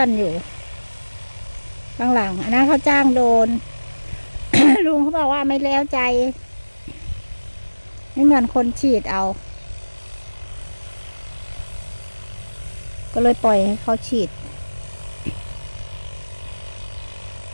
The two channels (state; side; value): inverted; both; correlation -1.00